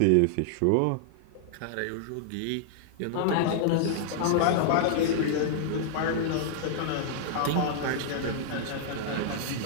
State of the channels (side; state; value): both; different; correlation -0.01